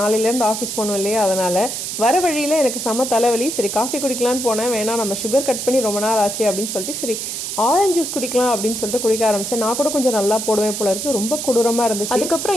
ஆஃபீஸ் போகணும் இல்லையா, அதனால் வர வழியில் எனக்கு செம தலைவலி. சரி காஃபி குடிக்கலான்னு போனேன். வேணா நம்ம சுகர் கட் பண்ணி ரொம்ப நாள் ஆச்சு அப்படின்னு சொல்லிட்டு சரி ஆரஞ்சு ஜூஸ் குடிக்கலாம் அப்படின்னு சொல்லிட்டு குடிக்க ஆரம்பித்தேன். நான் கூட கொஞ்சம் நல்லா போடுவேன் போல இருக்கு. ரொம்ப கொடூரமாக இருந்துச்சு.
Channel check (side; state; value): right; noise; hiss, 5 dB below the sound